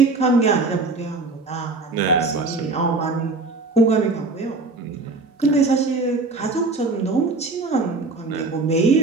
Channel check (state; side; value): quieter; left; 3.6 dB